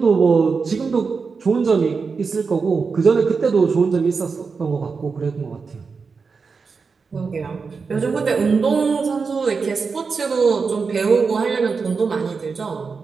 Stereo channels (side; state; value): left; quieter; 5.0 dB